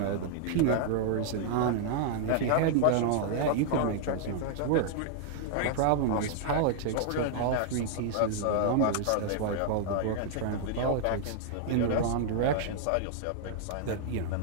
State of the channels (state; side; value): different; both; correlation -0.01